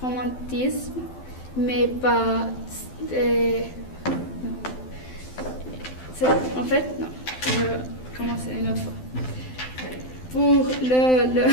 romantisme, mais pas... en fait, non, je vais commencer une autre fois. Pour le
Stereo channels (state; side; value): late; right; 12 ms